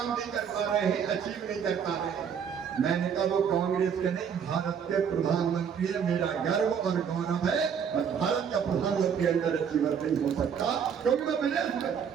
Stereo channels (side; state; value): left; quieter; 7.4 dB